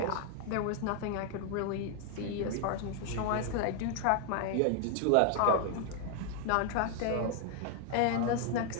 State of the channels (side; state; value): both; different; correlation 0.00